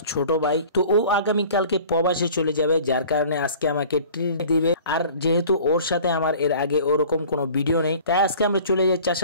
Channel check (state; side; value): inverted; both; correlation -0.46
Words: ছোট ভাই। তো ও আগামীকালকে প্রবাসে চলে যাবে, যার কারণে আজকে আমাকে ট্রিট দিবে। আর যেহেতু ওর সাথে আমার এর আগে ওরকম কোনো ভিডিও নেই, তাই আজকে আমরা চলে যাই